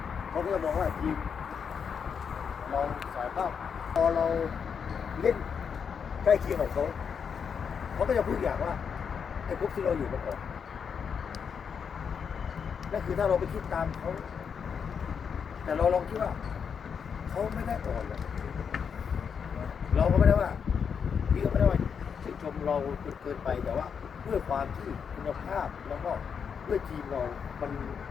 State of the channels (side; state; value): right; quieter; 6.7 dB